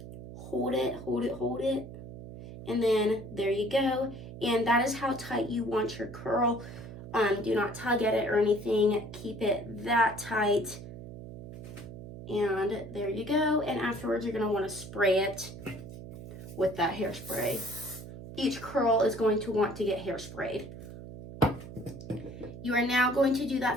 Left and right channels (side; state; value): right; noise; hum, 12 dB below the sound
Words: Hold it, hold it, hold it. And then there you go. And that is how tight you want your curl. Do not tug at it or anything. Keep it that tight. And there you go. And afterwards, you're going to want to spray it with that hairspray. Each curl is going to want to get hairsprayed. You are now going to do